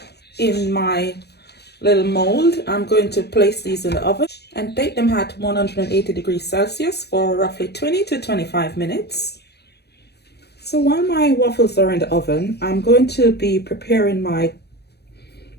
in my little mold. I'm going to place these in the oven and bake them at 180 degrees Celsius for roughly 20 to 25 minutes. So while my waffles are in the oven, I'm going to be preparing my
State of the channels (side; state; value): right; late; 0.48 ms